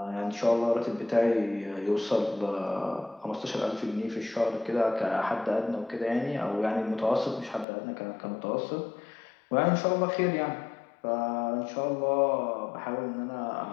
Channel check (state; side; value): drops out; right; at 7.7 s